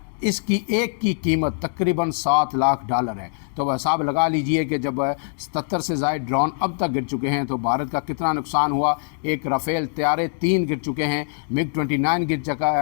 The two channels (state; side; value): silent; right; digital silence